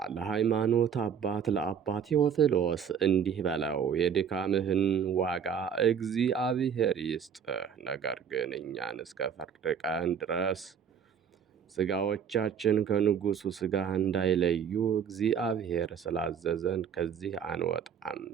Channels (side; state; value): left; quieter; 7.5 dB